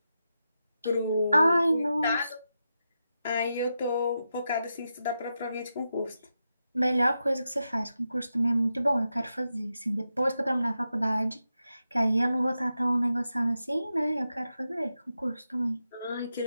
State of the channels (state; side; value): inverted; both; correlation -0.88